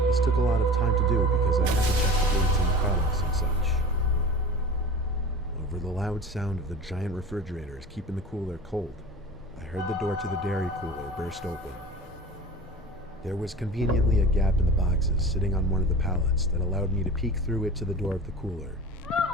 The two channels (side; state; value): both; normal; correlation 0.36